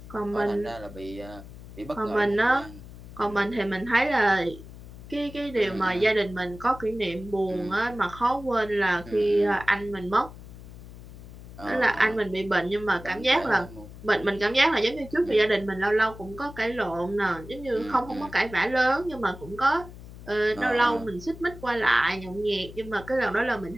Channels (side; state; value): left; noise; hum, 16 dB below the sound